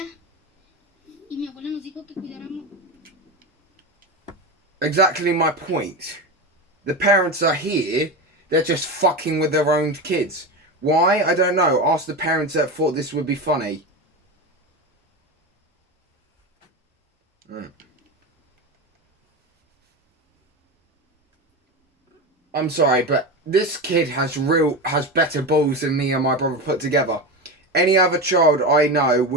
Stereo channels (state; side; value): normal; both; correlation 0.21